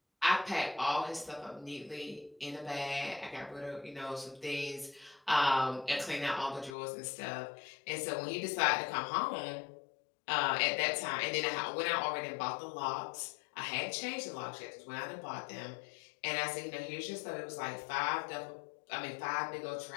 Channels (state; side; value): drops out; right; at 6.8 s